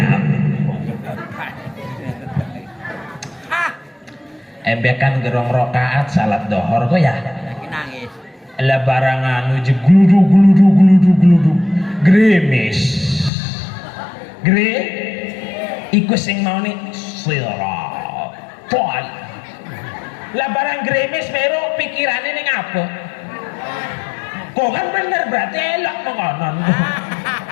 embekan gerong rokaat salat dohor kok ya nangis lah barangan uji gluduk gremis iku sing mau nih sirat toal lah barang gremis meru pikirannya nih apa kok kan bener berarti elok mengonon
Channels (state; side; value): drops out; right; at 13.3 s